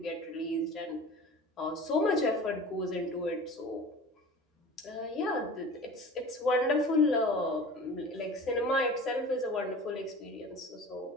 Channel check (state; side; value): normal; both; correlation 0.39